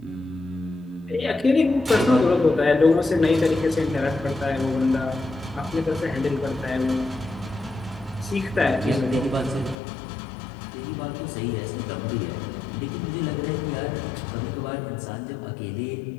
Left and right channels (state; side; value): drops out; right; at 9.8 s